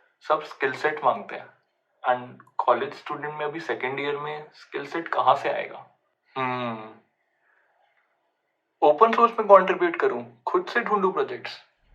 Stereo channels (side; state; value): both; identical; correlation 1.00